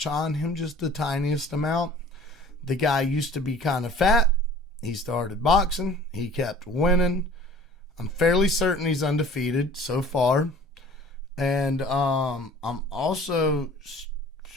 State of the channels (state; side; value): normal; both; correlation 0.47